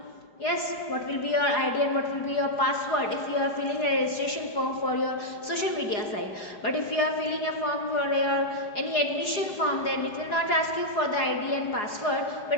Yes, what will be your ID and what will be your password if you are filling a registration form for your social media site. But if you are filling a form for your any admission form, then it will not ask you for the ID and password,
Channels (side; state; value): right; late; 4.9 ms